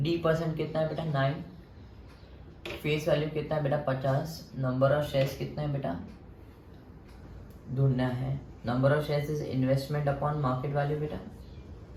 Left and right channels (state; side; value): identical; both; correlation 1.00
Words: D% कितना है बेटा 9. Face value कितना है बेटा 50. नंबर ऑफ शेयर्स कितना है बेटा ढूंढना है. Number of shares is investment upon market value बेटा